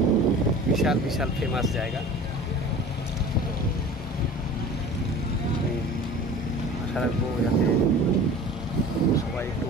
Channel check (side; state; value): both; normal; correlation 0.41